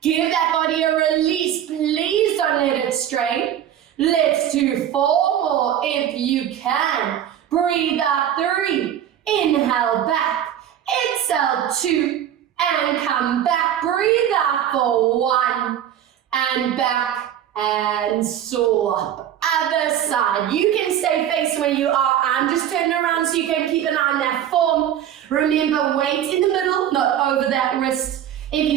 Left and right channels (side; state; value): left; quieter; 10.5 dB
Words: Give that body a release. Please don't let it strain. Let's do 4 more if you can. Breathe out 3. Inhale back. Exhale 2. And come back. Breathe out for 1. And back and swap. Other side. You can stay facing where you are. I'm just turning around so you can keep an eye on that form. Remember, weight in the middle, not over that wrist. If